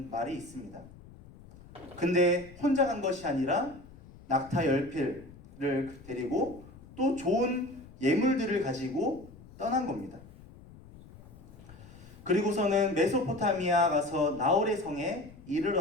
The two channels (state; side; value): noise; left; rumble, 20 dB below the sound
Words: 말이 있습니다. 근데 혼자 간 것이 아니라 낙타 10필을 데리고 또 좋은 예물들을 가지고 떠난 겁니다. 그리고서는 메소포타미아 가서 나홀의 성에